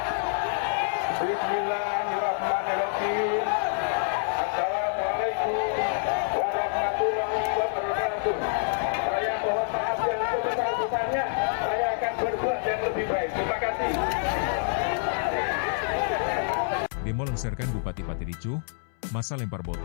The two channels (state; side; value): silent; right; 60 dB below the other